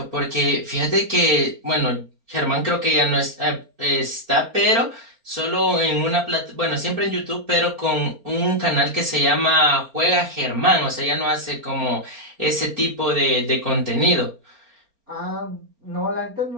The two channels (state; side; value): late; left; 4.3 ms